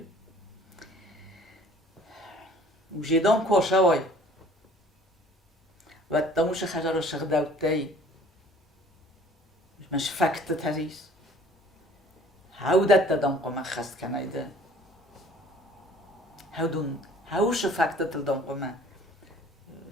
و جیدان کوشه وای و دموش خجر شغدوت توی مش فکت تریس هودت دادم قم خست کنایده هاوش فکت تلدم قم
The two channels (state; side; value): normal; both; correlation 0.52